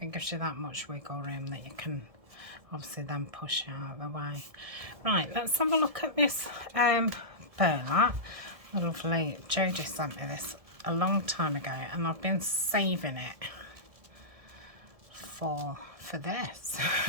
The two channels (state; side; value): late; left; 1.7 ms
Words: gives you that much wiggle room that you can obviously then push it out of the way. Right, let's have a look at this burlap. The lovely Jodie sent me this a long time ago, and I've been saving it for this.